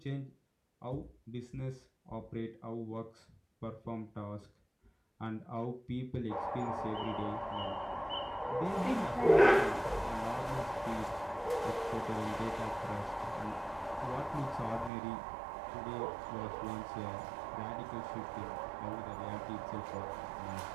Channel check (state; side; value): drops out; left; at 14.9 s